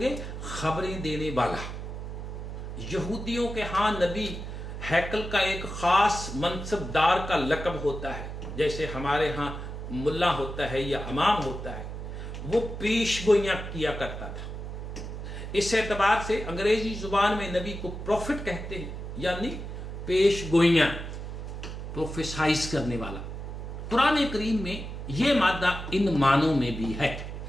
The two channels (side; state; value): right; noise; hum, 7 dB below the sound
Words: گے خبریں دینے والا. یہودیوں کے ہاں نبی ہیکل کا ایک خاص منصب دار کا لقب ہوتا ہے، جیسے ہمارے ہاں ملا ہوتا ہے یا امام ہوتا ہے. وہ پیش گوئیاں کیا کرتا تھا. اس اعتبار سے انگریزی زبان میں نبی کو پروفٹ کہتے ہیں، یعنی پیش گوئیاں، پروفیسائز کرنے والا. قرآن کریم میں یہ مادہ ان معنوں میں بھی ہے.